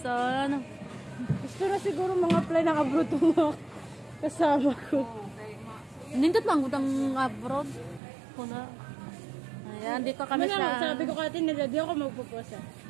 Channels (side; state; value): left; drops out; at 8.0 s